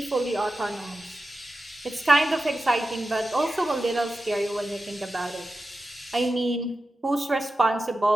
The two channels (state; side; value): normal; both; correlation 0.92